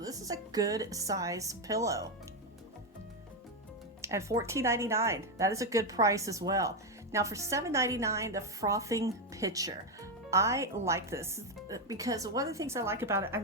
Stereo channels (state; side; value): normal; both; correlation 0.06